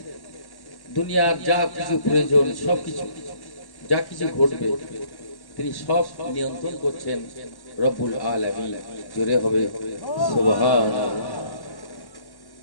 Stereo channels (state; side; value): late; right; 1.1 ms